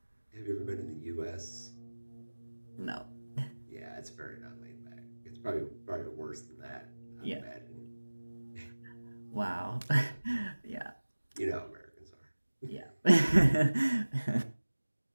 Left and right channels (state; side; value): inverted; both; correlation -1.00